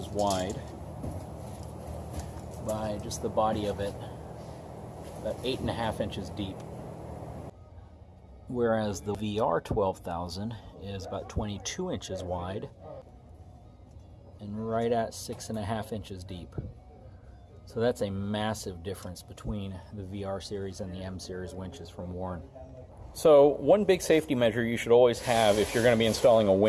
wide by just the body of it, about 8.5 inches deep. Whereas the VR 12,000 is about 22 inches wide and right at 6.5 inches deep. So that's a massive difference between the VR series and the M series winches from Warn. So one big safety measure you should always have if you're going to be installing a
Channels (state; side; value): identical; both; correlation 1.00